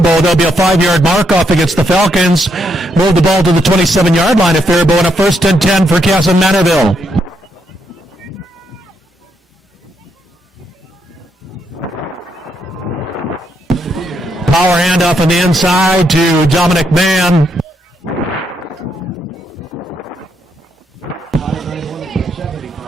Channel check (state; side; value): normal; both; correlation 0.77